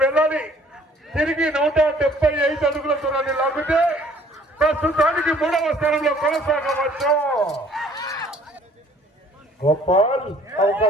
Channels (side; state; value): both; normal; correlation 0.56